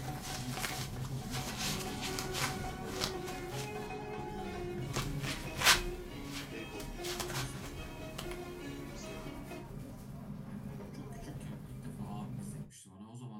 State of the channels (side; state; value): both; identical; correlation 1.00